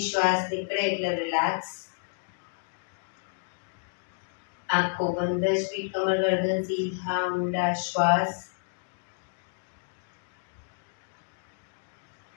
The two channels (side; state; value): right; silent; digital silence